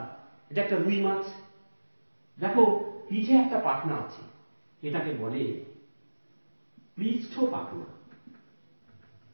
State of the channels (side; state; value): both; inverted; correlation -1.00